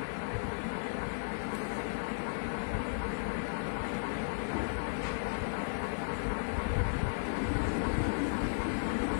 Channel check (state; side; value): silent; right; digital silence